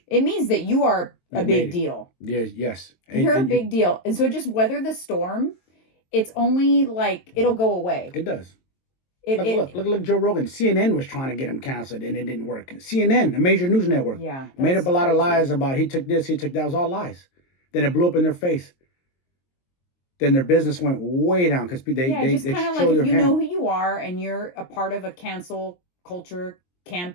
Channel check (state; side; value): late; right; 22 ms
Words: It means that you are a big deal. Yes. You're a big deal. And so just weather the storm. It's only like, it'll go away. It does. Look, Joe Rogan. CNN was trying to get him canceled and it didn't work. CNN, a major news network, made up a lot of lies about he took this, he took that. It was all lies. Then it blew up in their face. Then their business went way down because they just kind of like, if you know who you are and you're a part of a cancel culture